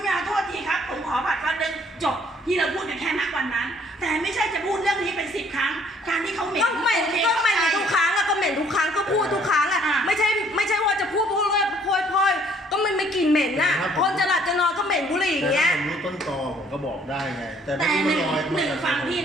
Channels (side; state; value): both; normal; correlation 0.61